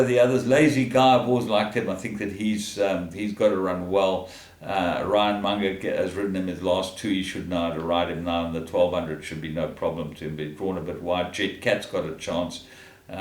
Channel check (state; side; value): identical; both; correlation 1.00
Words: the others? Lazy Guy, I've always liked him. I think that he's got to run well. Ryan Munger has ridden him his last 2. He should know how to ride him now, and the 1,200 should be no problem to him. But drawn a bit wide. Jet Cat's got a chance,